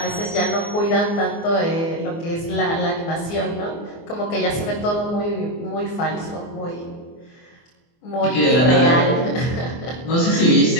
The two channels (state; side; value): late; right; 24 ms